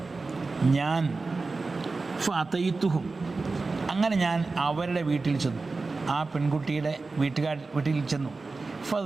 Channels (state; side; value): quieter; left; 3.8 dB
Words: ഞാൻ ഫഅതൈതുഹും, അങ്ങനെ ഞാൻ അവരുടെ വീട്ടിൽ ചെന്നു, ആ പെൺകുട്ടിയുടെ വീട്ടിൽ ചെന്നു.